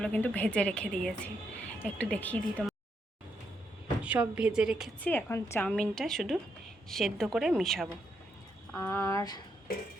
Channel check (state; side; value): normal; both; correlation 0.79